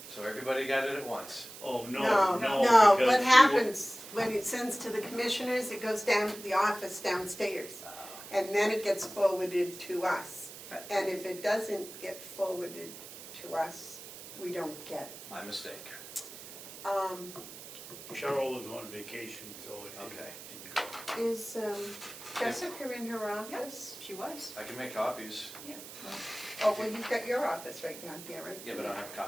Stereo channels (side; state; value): right; noise; hiss, 14 dB below the sound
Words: so everybody got it at once. Oh, no, No, no. no, because what she happens when it sends to the commissioners, it goes down to the office downstairs. And then it gets forwarded to us. Right. And if it doesn't get forwarded to us, we don't get it. My mistake. Cheryl was on vacation, so it Okay. didn't go. Is Jessica in her office? She was. I can make copies, Yeah. Well, Oh, well, you've got your office right down here, right? yeah, but I don't have a